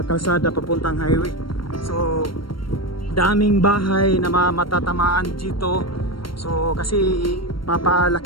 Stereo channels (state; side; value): late; right; 0.73 ms